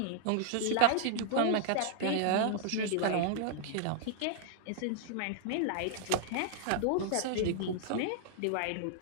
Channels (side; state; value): both; different; correlation -0.01